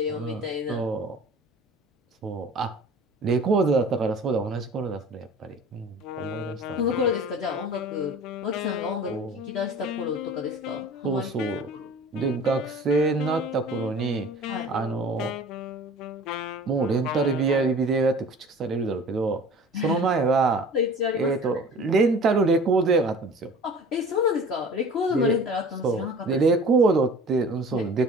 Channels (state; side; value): normal; both; correlation 0.43